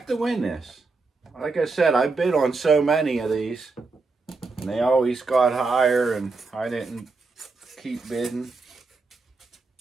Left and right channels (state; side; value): quieter; left; 3.9 dB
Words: to win this. Like I said, I bid on so many of these, and they always got higher, and I didn't keep bidding.